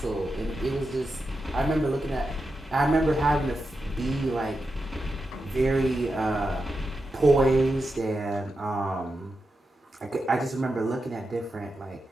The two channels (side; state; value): both; normal; correlation 0.88